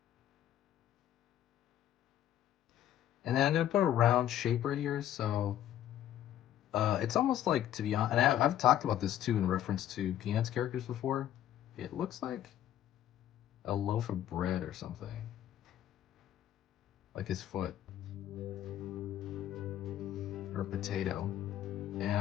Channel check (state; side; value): quieter; right; 11.7 dB